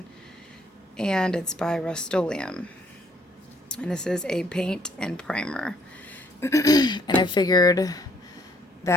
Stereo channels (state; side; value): normal; both; correlation 0.64